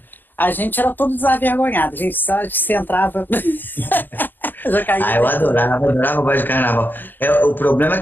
A gente era todo desavergonhado. A gente só se entrava... eu adorava o baile de carnaval. O problema é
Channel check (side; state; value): right; late; 0.091 ms